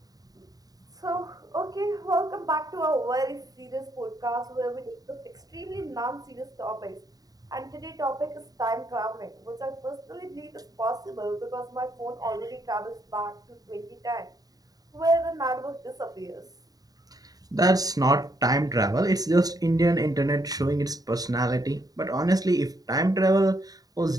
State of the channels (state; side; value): late; left; 0.18 ms